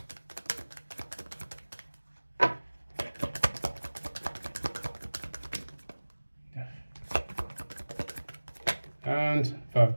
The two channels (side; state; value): both; inverted; correlation -1.00